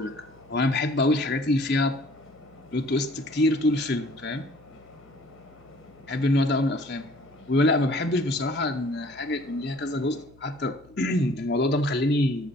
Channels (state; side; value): noise; left; hum, 27 dB below the sound